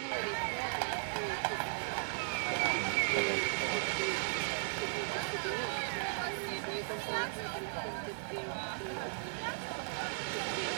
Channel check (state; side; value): silent; left; digital silence